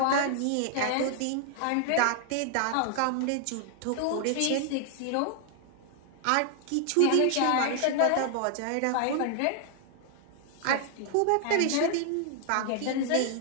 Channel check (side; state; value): both; different; correlation 0.00